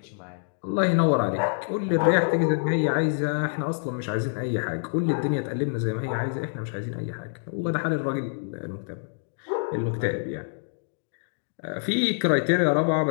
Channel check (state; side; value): silent; right; digital silence